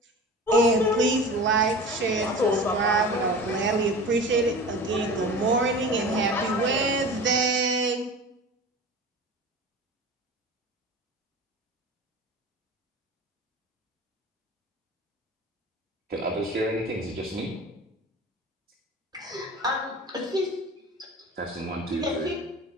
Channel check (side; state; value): both; normal; correlation 0.35